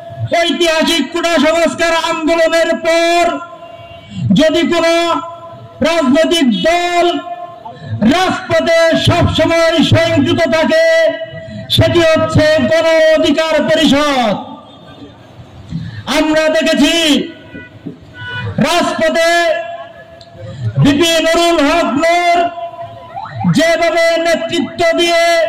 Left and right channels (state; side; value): identical; both; correlation 1.00